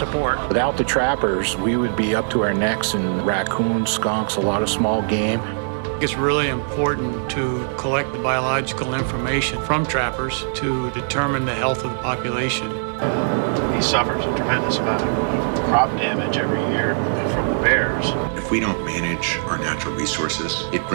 Without the trappers, we would be up to our necks in raccoons, skunks, a lot of small game. It's really important to collect the biological information from trappers to determine the health of the population. He suffers a tremendous amount of crop damage every year from the bears. If we don't manage our natural resources, it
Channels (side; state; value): left; silent; digital silence